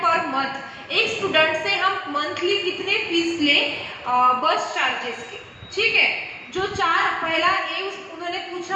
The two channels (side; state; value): both; identical; correlation 1.00